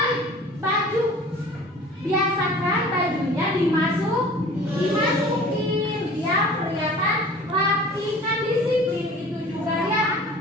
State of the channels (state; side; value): normal; both; correlation 0.45